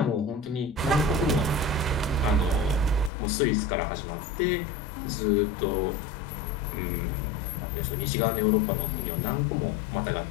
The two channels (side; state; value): right; drops out; at 3.1 s